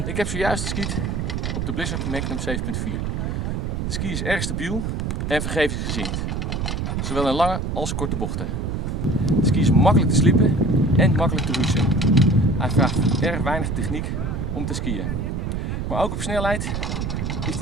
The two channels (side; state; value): right; noise; rumble, 2 dB below the sound